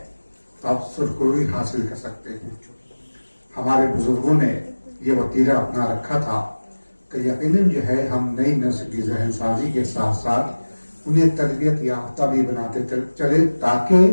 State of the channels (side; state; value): both; inverted; correlation -1.00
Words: تو آپ سرخروئی حاصل کر سکتے ہیں۔ ہمارے بزرگوں نے یہ وتیرہ اپنا رکھا تھا کہ یقیناً جو ہے ہم نئی نسل کی ذہن سازی کے ساتھ ساتھ انہیں تربیت یافتہ بھی بناتے چلے، تاکہ